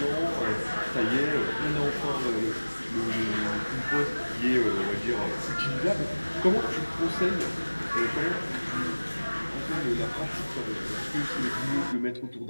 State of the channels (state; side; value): inverted; both; correlation -1.00